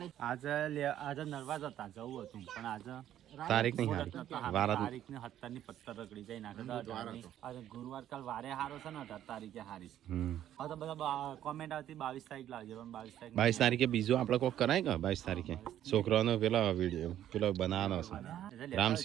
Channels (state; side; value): quieter; left; 11.5 dB